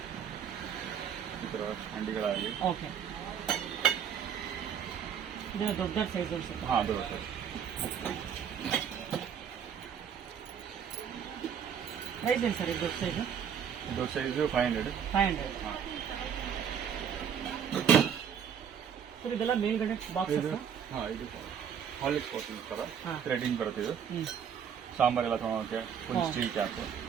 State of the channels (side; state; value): left; quieter; 8.0 dB